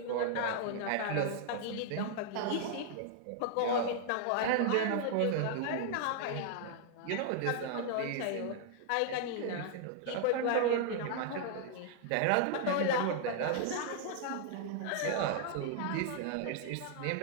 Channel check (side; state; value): both; different; correlation 0.00